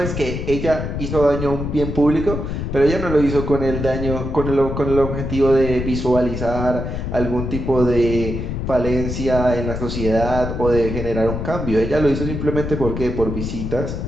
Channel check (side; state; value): left; noise; rumble, 4 dB below the sound